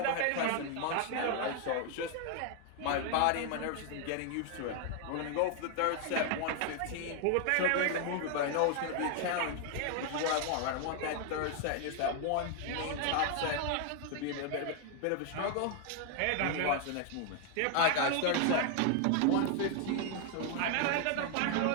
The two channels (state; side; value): different; both; correlation 0.00